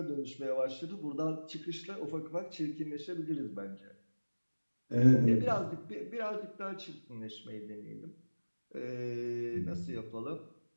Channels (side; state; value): both; inverted; correlation -1.00